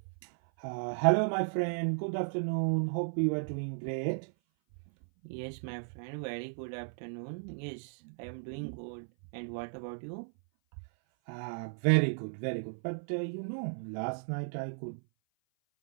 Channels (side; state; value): left; silent; 54 dB below the other